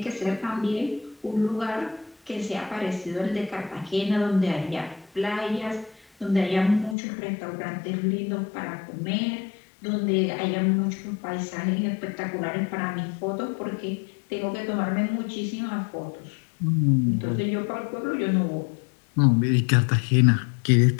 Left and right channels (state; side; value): drops out; right; at 7.0 s